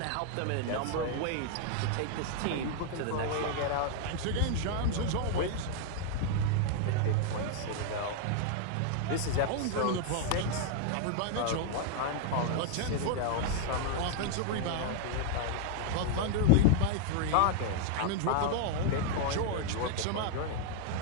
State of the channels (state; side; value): different; both; correlation 0.00